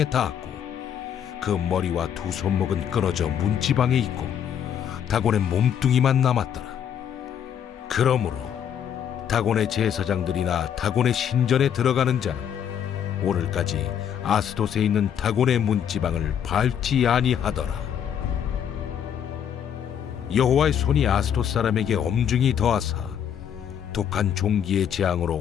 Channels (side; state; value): right; quieter; 8.8 dB